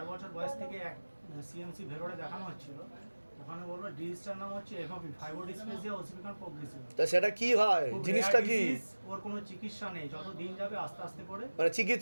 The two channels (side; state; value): both; inverted; correlation -1.00